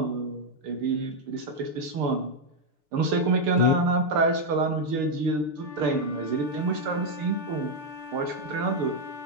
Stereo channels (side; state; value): left; late; 6.7 ms